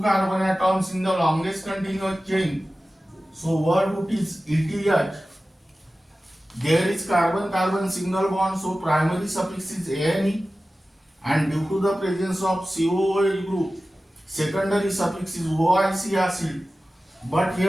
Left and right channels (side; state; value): both; normal; correlation 0.96